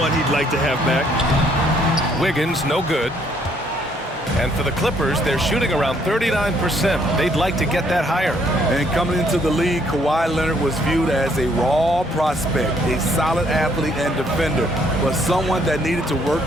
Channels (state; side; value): normal; both; correlation 0.67